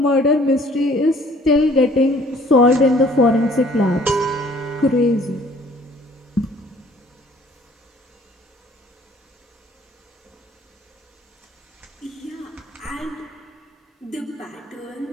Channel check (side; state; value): both; normal; correlation 0.55